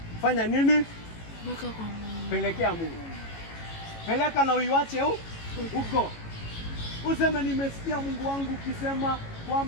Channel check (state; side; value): late; right; 18 ms